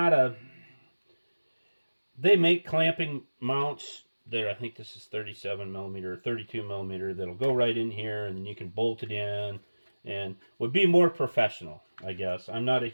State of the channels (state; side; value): inverted; both; correlation -1.00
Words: they make clamping mounts there. I think this is 37 millimeter, 32 millimeter. That'll go right in here, and then you can bolt it in, and would be more professional, I guess. I'm not a